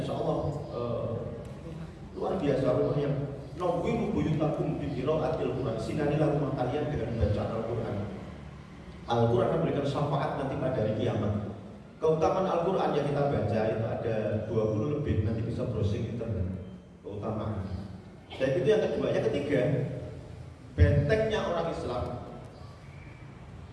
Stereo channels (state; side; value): identical; both; correlation 1.00